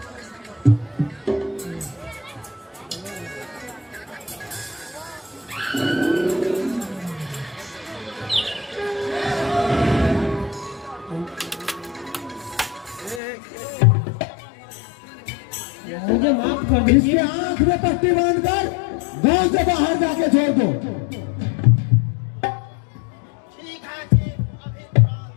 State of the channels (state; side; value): drops out; right; at 13.2 s